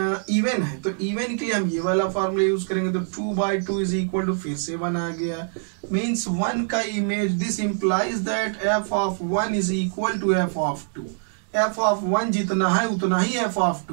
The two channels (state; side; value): silent; left; digital silence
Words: इवन है तो इवन के लिए हम ये वाला फार्मूला यूज करेंगे, तो 2/2 इज इक्वल टू फिर से 1 आ गया, मीन्स 1 का image, this implies that f of 1 is equal to f of 2। f of 1 जितना है उतना ही f ऑफ